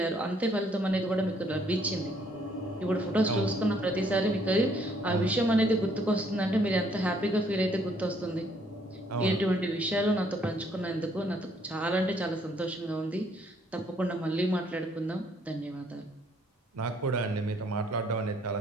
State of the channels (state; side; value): normal; both; correlation 0.66